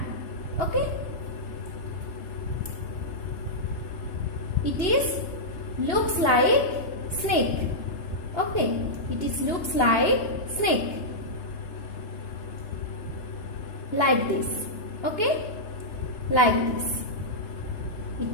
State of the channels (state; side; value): late; right; 2.9 ms